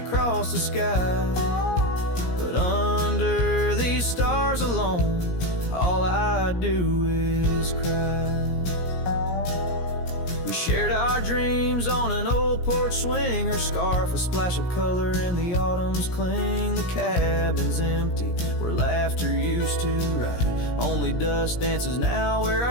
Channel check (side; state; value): right; late; 17 ms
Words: the sky, but under these stars alone, all I do is cry. We shared our dreams on an old porch swing. Her scarf a splash of color in the autumn's cling. The cabin's empty where laughter used to ride. Only dust dances now where